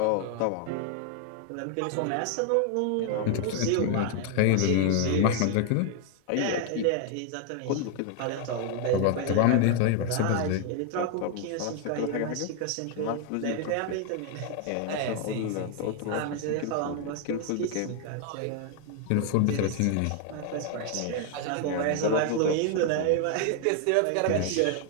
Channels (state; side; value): different; both; correlation 0.00